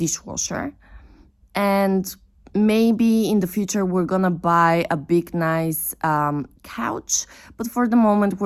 And maybe in the future we're gonna buy a big nice couch, but for the moment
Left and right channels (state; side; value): identical; both; correlation 1.00